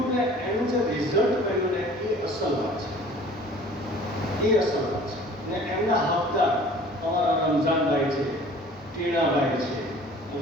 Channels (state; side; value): normal; both; correlation 0.48